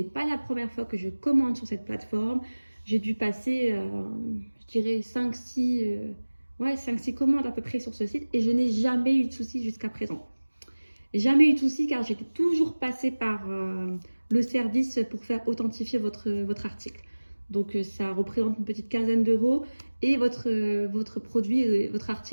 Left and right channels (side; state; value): both; inverted; correlation -1.00